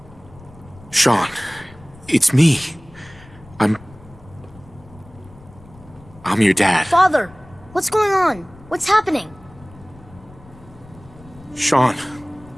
Sean, it's me. I'm your dad. Father, what's going on? What's happening? Sean,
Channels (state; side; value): noise; left; rumble, 22 dB below the sound